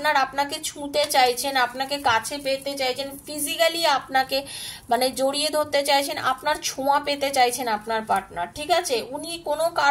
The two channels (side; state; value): both; identical; correlation 1.00